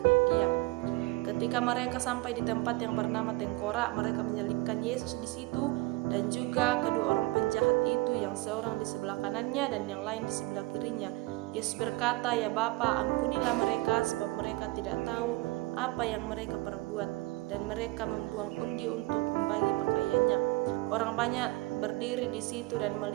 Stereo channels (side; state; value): left; quieter; 21.2 dB